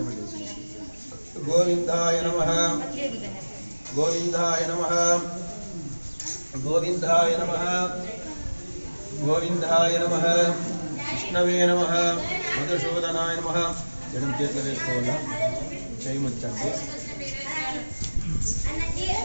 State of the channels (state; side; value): inverted; both; correlation -1.00